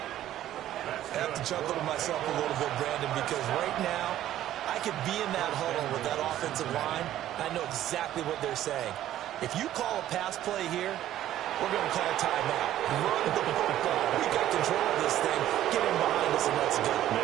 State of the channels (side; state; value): left; quieter; 12.7 dB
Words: I have to chuckle to myself a little bit, Brandon, because right now, I could be in that huddle with that offensive line. I know exactly what they're saying. If you call a pass play here, we're going to call a timeout. Run the football. We got control of this thing. Get him behind us and let's go.